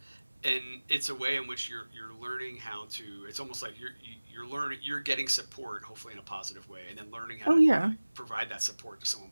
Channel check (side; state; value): both; inverted; correlation -1.00